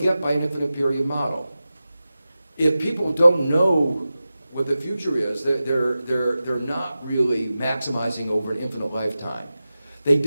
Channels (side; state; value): both; inverted; correlation -0.94